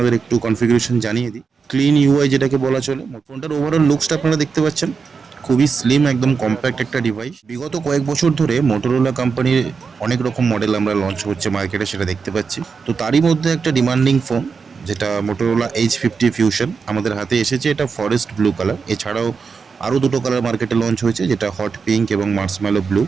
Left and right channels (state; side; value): quieter; left; 5.4 dB